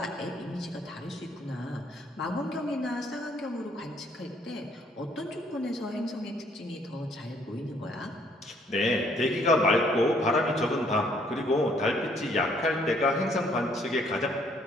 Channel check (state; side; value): normal; both; correlation 0.65